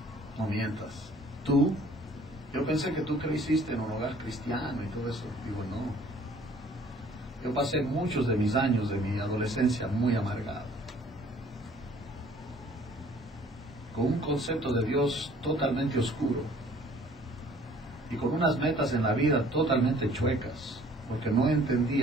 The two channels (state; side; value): normal; both; correlation 0.55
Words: No mientas. ¿Tú? Yo pensé que tú creciste en un hogar cristiano y todo eso. Digo, no. Yo pasé muchos de mis años de mi adolescencia muy amargado, con un concepto de Dios totalmente oscuro y con unas metas en la vida totalmente chuecas, porque no